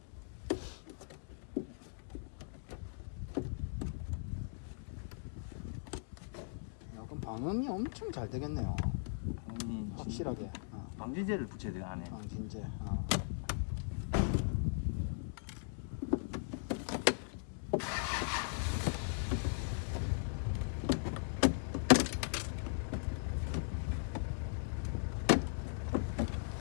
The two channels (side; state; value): right; silent; digital silence